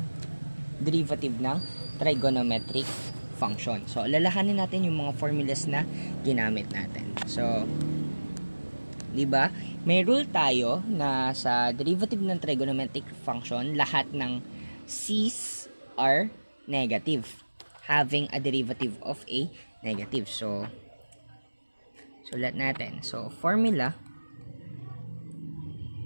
derivative ng trigonometric function. So, lalahanin natin yung mga formulas na ginamit natin. So, di ba? May rule tayo na sa derivative ng trigonometric function, lahat ng c's are negative, having a derivative of a negative. So, sulat natin. So, formula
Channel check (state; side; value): inverted; both; correlation -1.00